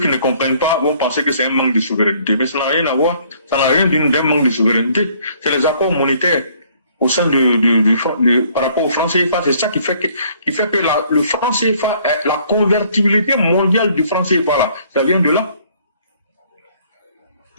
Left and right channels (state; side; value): inverted; both; correlation -0.61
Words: ne comprennent pas vont penser que c'est un manque de souveraineté. Mais ça n'a rien à voir. Ça n'a rien d'un manque de souveraineté. C'est les accords monétaires au sein par rapport au franc CFA. C'est ça qui fait que le franc CFA, la convertibilité mondiale du franc CFA, là, ça vient de là.